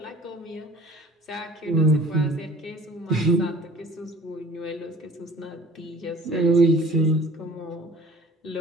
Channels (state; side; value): normal; both; correlation 0.48